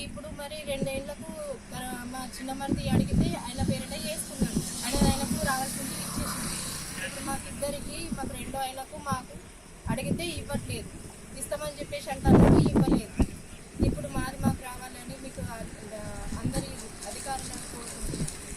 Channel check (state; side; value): identical; both; correlation 1.00